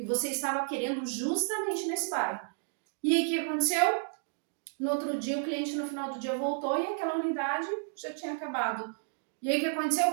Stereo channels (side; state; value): left; silent; 57 dB below the other